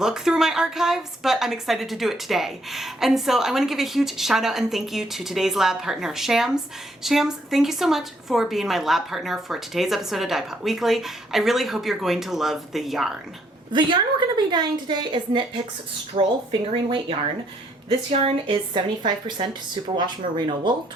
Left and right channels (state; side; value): normal; both; correlation 0.70